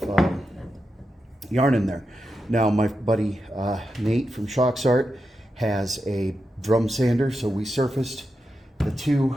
yarn in there. Now my buddy Nate from Shock's Art has a drum sander, so we surfaced the two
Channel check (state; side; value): normal; both; correlation 0.88